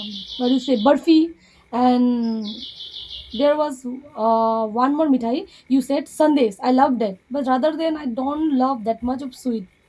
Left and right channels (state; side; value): identical; both; correlation 1.00